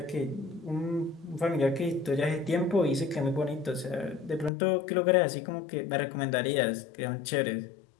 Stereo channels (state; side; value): drops out; right; at 4.5 s